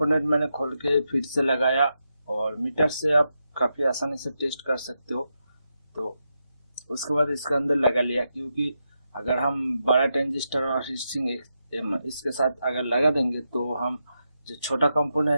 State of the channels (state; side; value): inverted; both; correlation -0.86